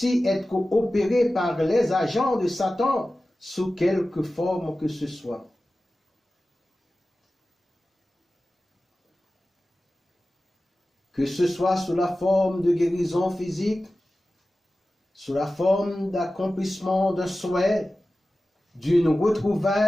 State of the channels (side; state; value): both; normal; correlation 0.95